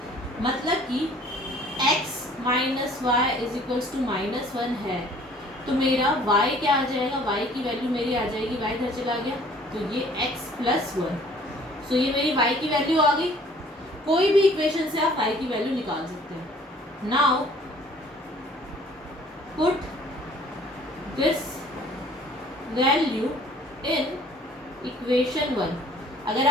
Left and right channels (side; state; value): both; normal; correlation 0.54